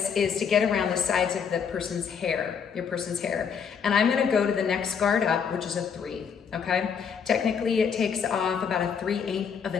is to get around the sides of the person's hair, your person's hair. And I'm gonna go to the next guard up, which is a 3, okay? Technically, it takes off about a 3/8 of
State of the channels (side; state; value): right; quieter; 6.9 dB